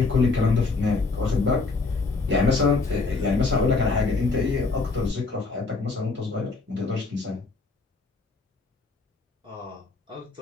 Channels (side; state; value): right; quieter; 3.9 dB